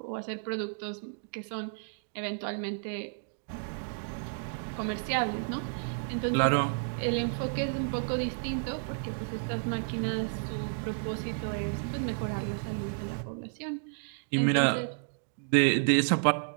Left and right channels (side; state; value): left; silent; digital silence